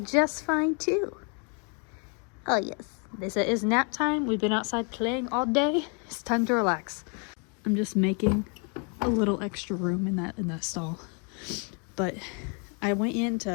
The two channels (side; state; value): right; quieter; 37.1 dB